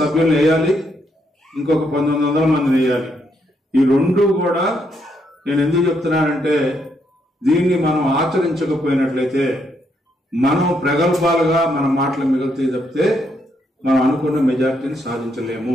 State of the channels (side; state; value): both; normal; correlation 0.76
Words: వేయాలి. ఇంకొక 1900 మందిని వేయాలి. ఈ రెండు కూడా నేను ఎందుకు చెప్తున్నానంటే, దీన్ని మనం ఆచరించకపోయినట్లయితే మనం ప్రగల్భాలుగా మన మాటలు మిగులుతాయి తప్పితే మనం అనుకున్న మెజార్టీని సాధించలేము.